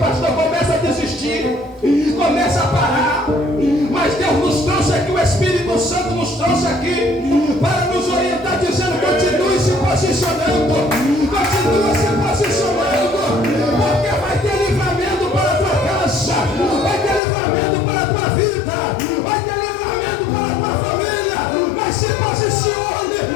começa a desistir, começa a parar. Mas Deus nos trouxe aqui, o Espírito Santo nos trouxe aqui para nos orientar, dizendo: continue se posicionando, continue se posicionando, porque vai ter livramento para a tua casa, vai ter livramento para a tua vida, vai ter livramento para a tua família. Mas se posicione,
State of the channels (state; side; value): drops out; right; at 17.2 s